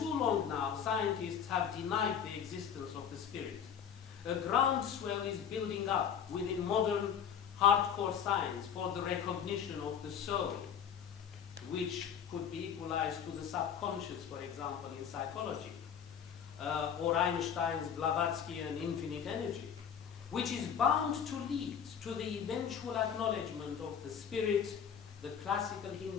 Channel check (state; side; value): quieter; right; 8.0 dB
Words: long now, scientists have denied the existence of the spirit. A groundswell is building up within modern hardcore science for the recognition of the soul, which could be equalized to the subconscious, for example, in psychology, or Einstein's Blavatskyan infinite energy, which is bound to lead to the eventual acknowledgement of the spirit, the classical